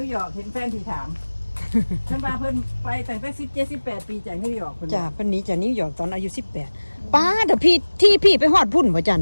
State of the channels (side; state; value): both; inverted; correlation -1.00